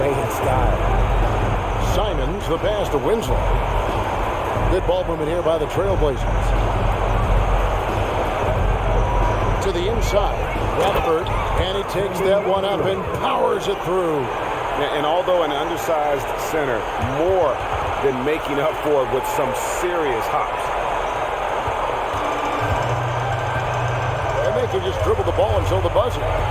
in style. Simons, the pass to Winslow. Good ball movement here by the Trailblazers. To the inside, Radford, and he takes that one up and powers it through. And although an undersized center, more than making up for it with some serious hops. And they can just dribble the ball until the buzzer.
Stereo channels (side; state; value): both; identical; correlation 1.00